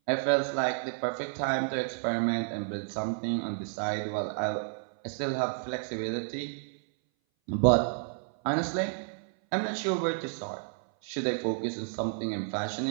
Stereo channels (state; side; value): silent; left; 57 dB below the other